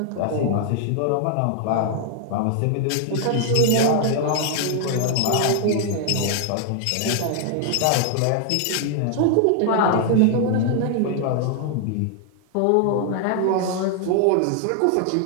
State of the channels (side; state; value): both; different; correlation 0.00